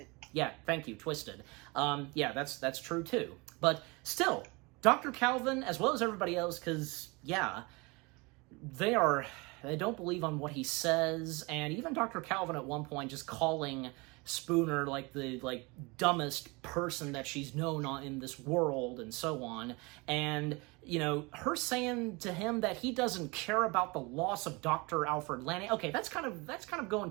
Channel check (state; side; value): quieter; left; 26.6 dB